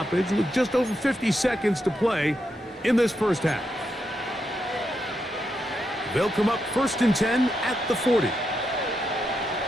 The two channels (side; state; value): both; normal; correlation 0.83